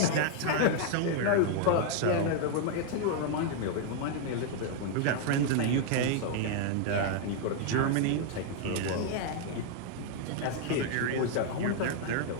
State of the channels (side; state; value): both; different; correlation 0.00